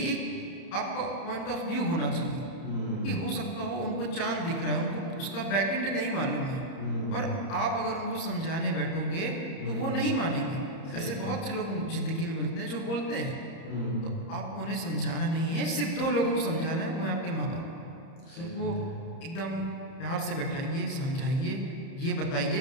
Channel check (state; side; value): late; right; 30 ms